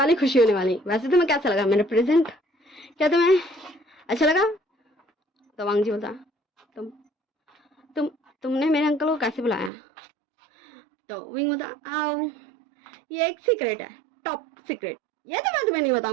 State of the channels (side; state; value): left; drops out; at 9.7 s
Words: खुशी होने वाली। वैसे तुम्हें कैसा लगा मेरा प्रेजेंट, क्या तुम्हें अच्छा लगा? तो वांग जी बोलता, तुम तुम तुमने मेरे अंकल को कैसे बुलाया? तो विंग बोलता, आओ ये एक सीक्रेट है, टॉप सीक्रेट, ये तो मैं तुम्हें नहीं